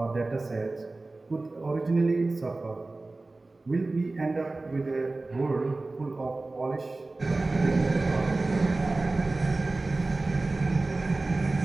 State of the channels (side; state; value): left; quieter; 3.2 dB